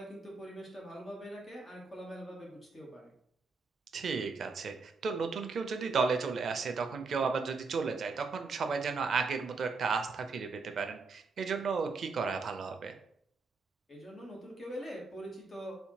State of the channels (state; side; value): quieter; left; 4.4 dB